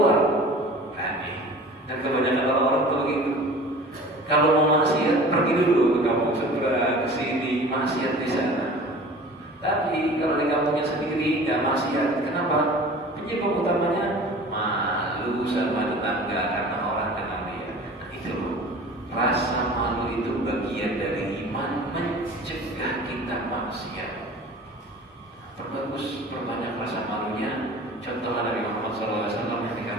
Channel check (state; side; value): normal; both; correlation 0.42